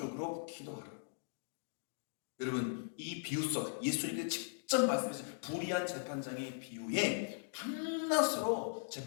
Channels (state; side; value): silent; right; digital silence